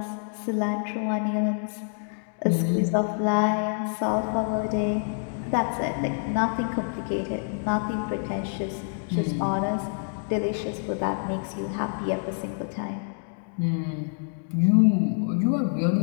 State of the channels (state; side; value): silent; right; 60 dB below the other